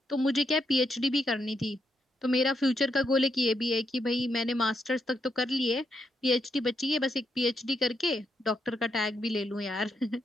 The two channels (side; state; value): both; normal; correlation 0.79